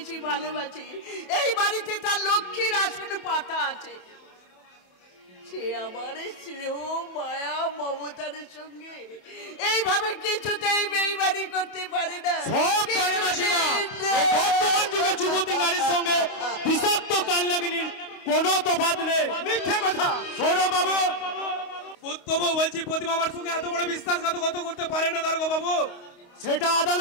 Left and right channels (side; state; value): right; late; 28 ms